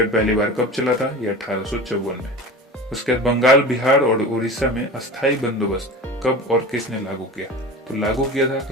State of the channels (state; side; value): normal; both; correlation 0.34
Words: पहली बार कब चला था, ये 1854 में। उसके बाद बंगाल, बिहार और उड़ीसा में अस्थायी बंदोबस्त कब और किसने लागू किया, तो लागू किया था